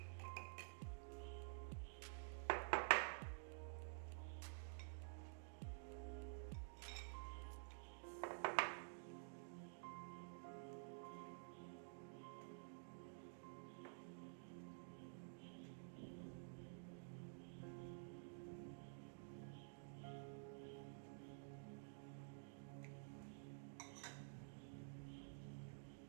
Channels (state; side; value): silent; left; digital silence